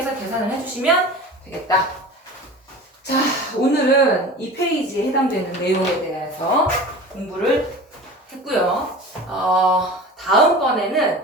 계산을 해주시면 되겠다. 자, 오늘은 이 페이지에 해당되는 내용에 대해서 공부를 했고요. 다음번에는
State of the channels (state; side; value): normal; both; correlation 0.36